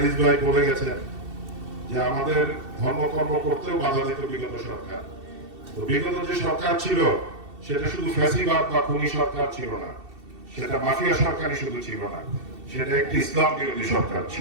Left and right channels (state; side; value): late; left; 2.7 ms